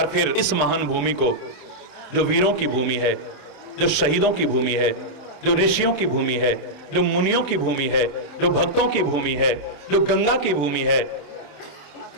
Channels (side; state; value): right; late; 27 ms